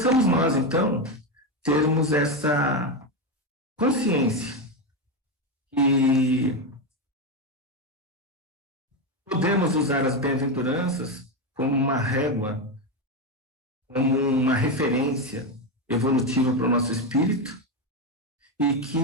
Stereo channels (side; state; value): both; normal; correlation 0.11